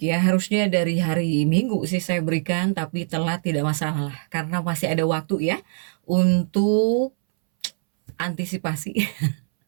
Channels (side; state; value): left; silent; 63 dB below the other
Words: ya, harusnya dari hari Minggu sih saya berikan, tapi telat tidak masalah karena masih ada waktu ya untuk antisipasi.